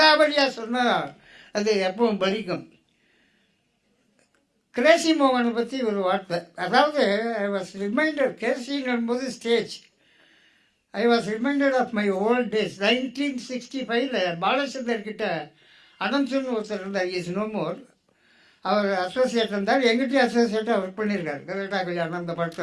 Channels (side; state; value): both; identical; correlation 1.00